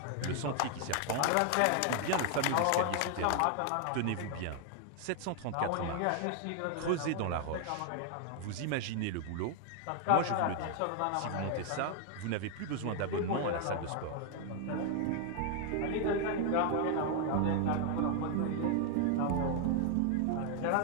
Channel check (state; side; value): different; both; correlation 0.00